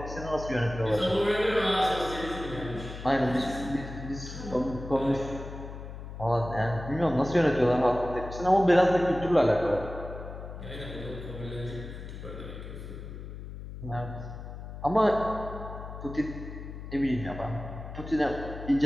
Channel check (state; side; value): noise; left; hum, 10 dB below the sound